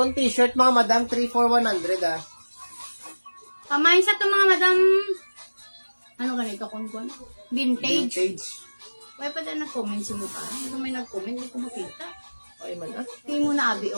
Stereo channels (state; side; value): inverted; both; correlation -1.00